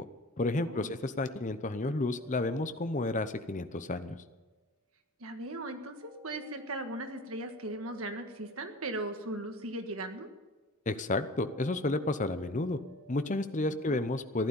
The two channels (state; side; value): normal; both; correlation 0.41